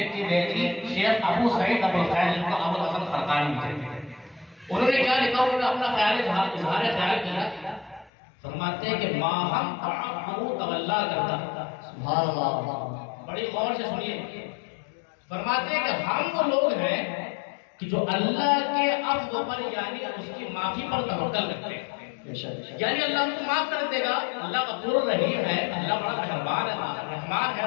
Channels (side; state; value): right; drops out; at 8.1 s